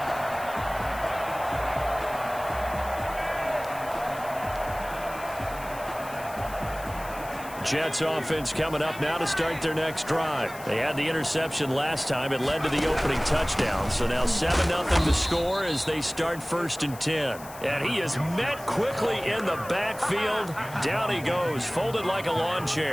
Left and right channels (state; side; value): noise; left; hiss, 17 dB below the sound